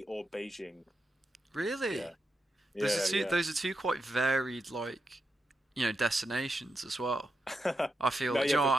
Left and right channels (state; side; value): normal; both; correlation 0.86